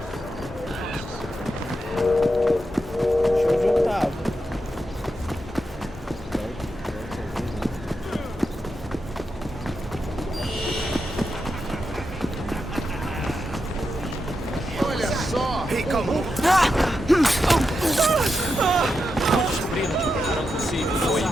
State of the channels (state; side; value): normal; both; correlation 0.87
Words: Deixa eu juntar. Olha só! Ei, calma.